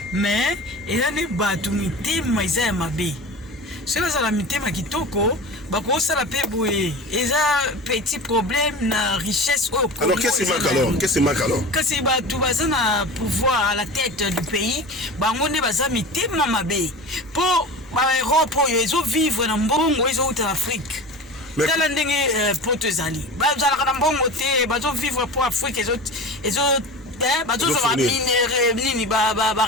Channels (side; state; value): both; normal; correlation 0.32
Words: mais eza ni batu mitima isa mabe. C'est ça la mitima kitoko, ba ko sala pe boye. Eza petit problème na richesse au. Alors qu'est-ce qui manque alors? Que si batu baza na pouvoir à la tête du pays, ba ngone baza mitima mabe. Pour Europe, ils ont vivre dans Mbongo, ils ont en Afrique. Tala ndenge poto ezali. Ba zala kana Mbongo te, ba zo vivre pour Afrique, ils ont ba zo ba minéraux nini ba